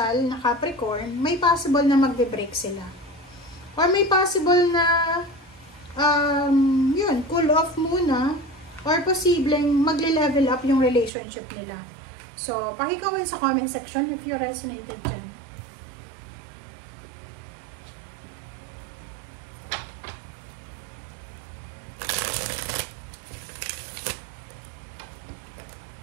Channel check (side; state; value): left; drops out; at 11.1 s